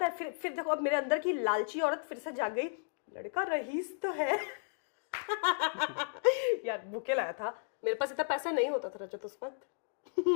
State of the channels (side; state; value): right; silent; digital silence